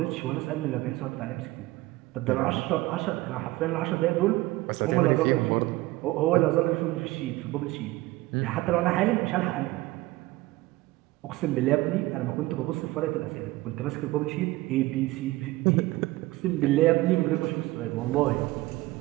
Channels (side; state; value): left; quieter; 19.3 dB